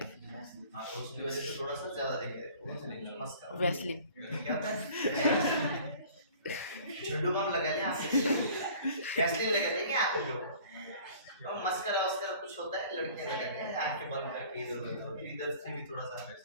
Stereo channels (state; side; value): inverted; both; correlation -0.49